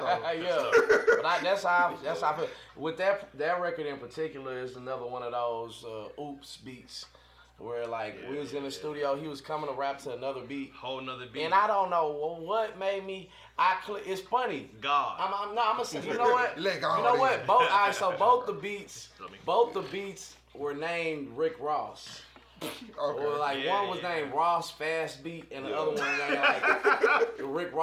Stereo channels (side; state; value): both; identical; correlation 1.00